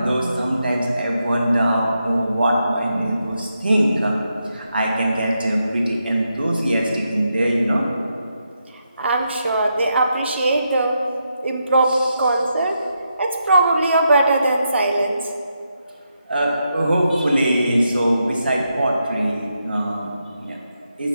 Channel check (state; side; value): inverted; both; correlation -0.83